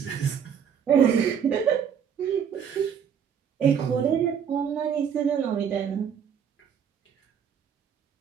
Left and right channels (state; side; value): quieter; left; 7.8 dB